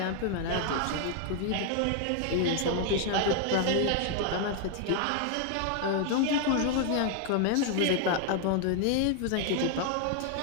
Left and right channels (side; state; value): both; different; correlation 0.00